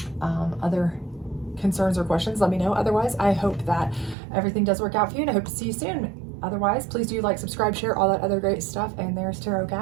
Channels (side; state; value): left; drops out; at 4.2 s